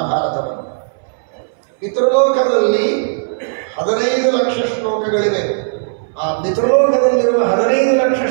ಪಿತೃಲೋಕದಲ್ಲಿ 15 ಲಕ್ಷ ಶ್ಲೋಕಗಳಿವೆ. ಆ ಪಿತೃಲೋಕದಲ್ಲಿರುವ 15 ಲಕ್ಷ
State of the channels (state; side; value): silent; left; 64 dB below the other